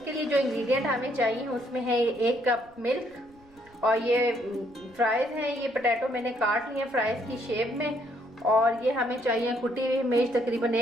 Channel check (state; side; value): noise; right; rumble, 29 dB below the sound